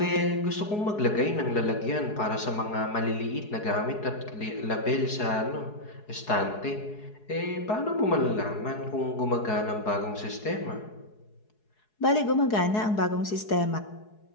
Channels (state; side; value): late; right; 4.7 ms